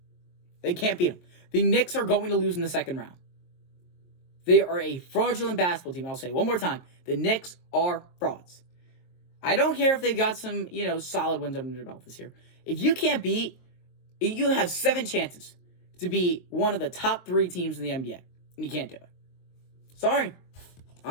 The Knicks are going to lose in the second round. They are a fraudulent basketball team. I'll say it one more time. The Knicks are frauds. I don't care if they've got some, solid wins under their belt this year. If you can't beat, you have 7 chances to be one of the top 3 teams in the NBA. And you can't do it. Sorry.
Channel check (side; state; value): right; late; 23 ms